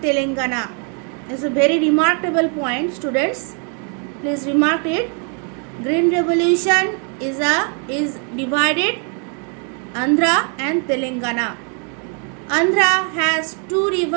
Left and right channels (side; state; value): left; quieter; 39.4 dB